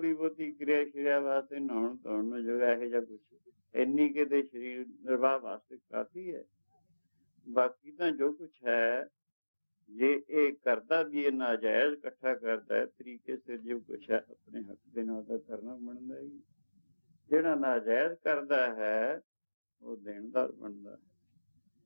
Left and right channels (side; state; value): both; inverted; correlation -1.00